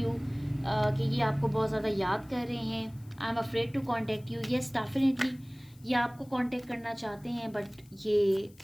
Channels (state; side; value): noise; left; hiss, 28 dB below the sound